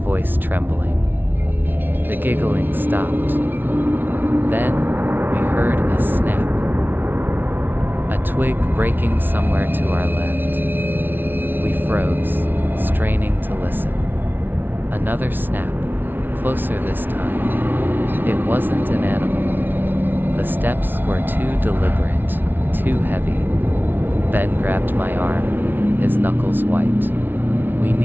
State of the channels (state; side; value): late; left; 0.096 ms